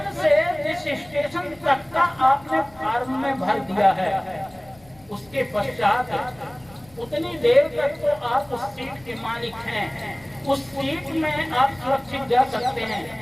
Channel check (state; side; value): noise; left; rumble, 26 dB below the sound